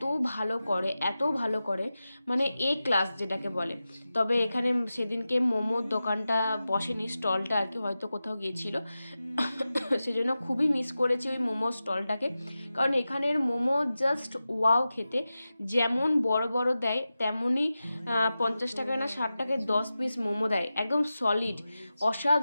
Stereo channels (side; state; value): both; inverted; correlation -0.94